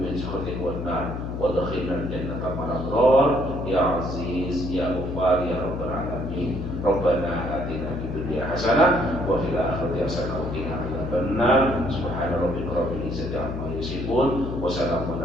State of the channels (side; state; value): left; noise; hum, 5 dB below the sound